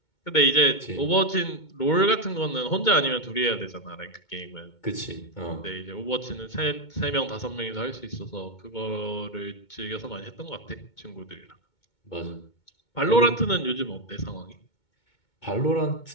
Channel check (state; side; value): late; right; 2.2 ms